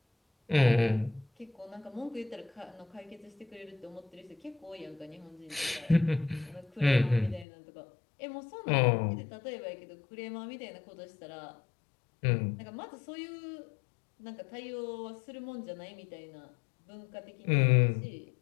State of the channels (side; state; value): right; drops out; at 7.5 s